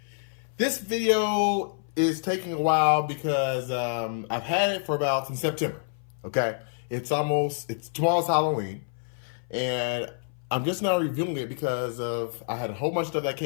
This video is taking a while because I've had it for about since September. Okay, it's tomorrow's Halloween, and I'm just now reviewing it because I had a whole bunch of stuff that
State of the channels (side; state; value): right; silent; 57 dB below the other